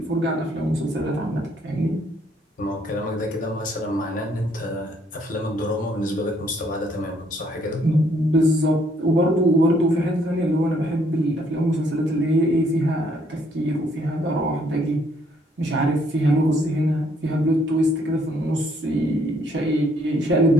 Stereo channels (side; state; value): both; normal; correlation 0.67